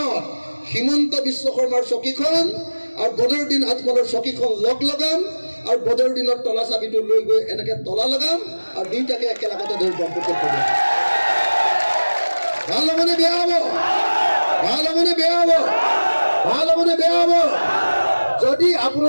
হিমন্ত বিশ্ব শৰ্মাৰ চকীখন আৰু বদৰুদ্দিন আজমলৰ চকীখন লগ লগাম, আৰু বদৰুদ্দিনৰ তলা চাবিটো লৈ গৈ এনেকে তলা লগাম, আৰু দুইটাকে একেলগতে ধৰি ব্ৰহ্মপুত্ৰত পেলাম। ভাল হ'বনে বেয়া হ'ব? ভাল হ'বনে বেয়া হ'ব? ভাল হ'বনে বেয়া হ'ব? যদি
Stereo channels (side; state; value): both; inverted; correlation -1.00